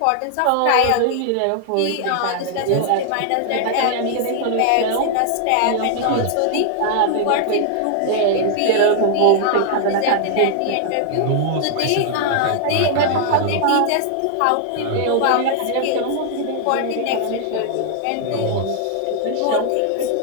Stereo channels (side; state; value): both; different; correlation 0.00